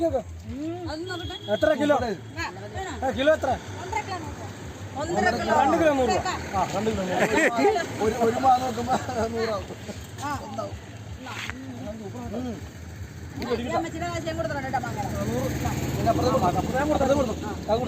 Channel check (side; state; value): both; identical; correlation 1.00